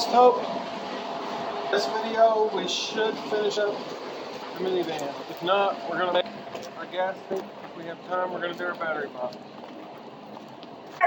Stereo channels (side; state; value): both; identical; correlation 1.00